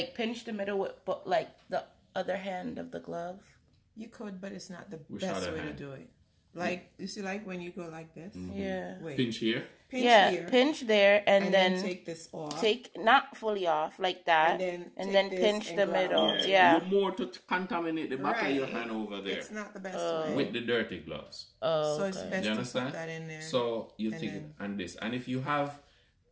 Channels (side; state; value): both; identical; correlation 1.00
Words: pinch the middle with like the other hand of the glove? You could, but it's not the best way to do it. Like, you see, like when you go like this? Yeah. Wait. Pinch here? Pinch here. Pinch there and then take this off. Take, not fully off, like that. And then pinch the middle. Yeah. You're more to contaminate the back of your hand over there. It's not the best way. With the dirty gloves. Oh, so it's best you understand? To put that in there. So you take it and this. And if you have,